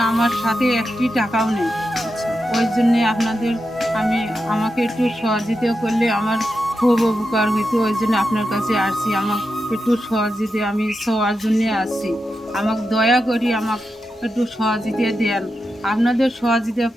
আমার সাথে একটি টাকাও নেই। আচ্ছা ওই জন্যে আপনাদের আমাকে একটু সহযোগিতা করলে আমার খুব উপকার হইতো। ওই জন্য আপনার কাছে আসছি, আমাকে একটু সহযোগিতা, আমি সবার জন্যে আসছি। আমাকে দয়া করি আমাকে একটু সহযোগিতা দেন। আপনাদের সহযোগিতা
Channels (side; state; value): both; normal; correlation 0.88